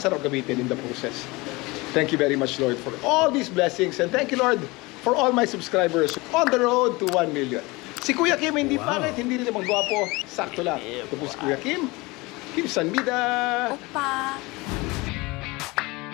gamitin in the process. Thank you very much, Lord, for all these blessings. And thank you, Lord, for all my subscribers on the road to 1 million. Si Kuya Kim, hindi pangit, hindi rin naman gwapo. Sakto lang. Ito po si Kuya Kim. Kim Sanbida. Opa!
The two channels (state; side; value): quieter; right; 23.4 dB